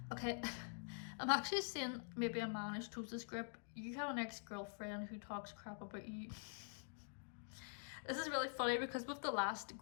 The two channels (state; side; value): silent; right; digital silence